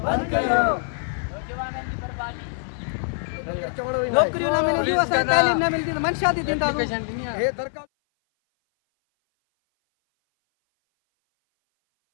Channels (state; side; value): silent; right; 57 dB below the other